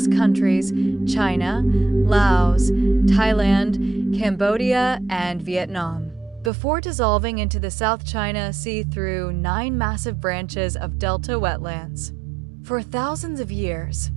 countries: China, Laos, Thailand, Cambodia, and Vietnam, before dissolving into the South China Sea through 9 massive branches of delta wetlands. For thousands of years,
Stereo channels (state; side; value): drops out; left; at 6.5 s